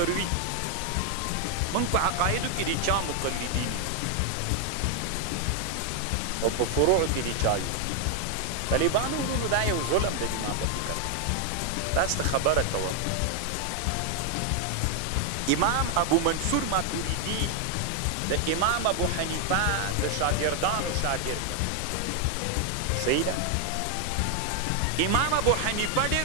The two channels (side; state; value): both; different; correlation 0.00